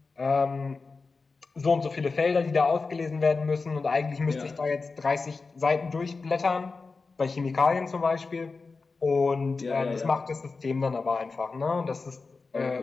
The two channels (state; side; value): quieter; right; 4.2 dB